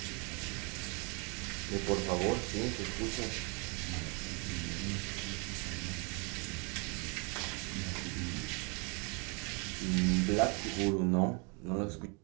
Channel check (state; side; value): quieter; left; 33.1 dB